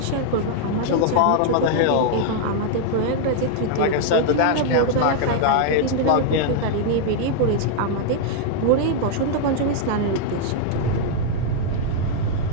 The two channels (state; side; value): different; both; correlation -0.01